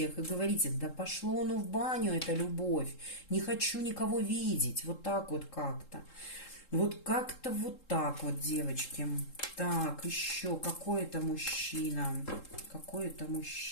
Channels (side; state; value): right; late; 3.7 ms